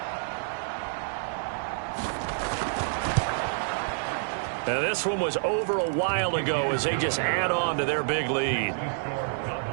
Now this one was over a while ago as they just add on to their big lead.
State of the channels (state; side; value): silent; left; digital silence